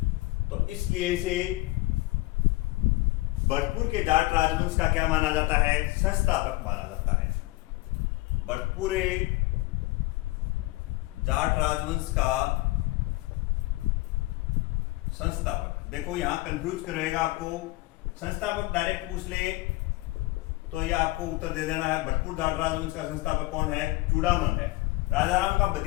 तो इसलिए इसे भरतपुर के जाट राजवंश का क्या माना जाता है, संस्थापक माना जाता है। भरतपुर जाट राजवंश का संस्थापक। देखो यहां कंफ्यूज करेगा आपको, संस्थापक डायरेक्ट पूछ ले तो ये आपको उत्तर दे देना है। भरतपुर जाट राजवंश का संस्थापक कौन है, चूड़ामन है। राजा राम का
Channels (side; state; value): right; quieter; 20.4 dB